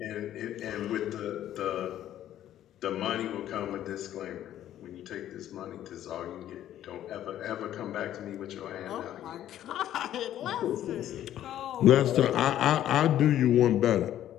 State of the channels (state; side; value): quieter; right; 11.9 dB